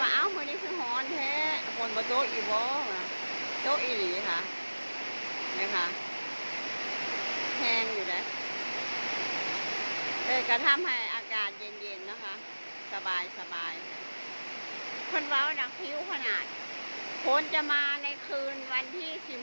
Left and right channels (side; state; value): both; inverted; correlation -1.00